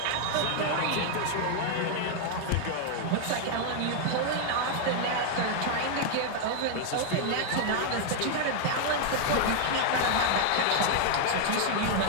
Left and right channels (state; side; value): different; both; correlation 0.00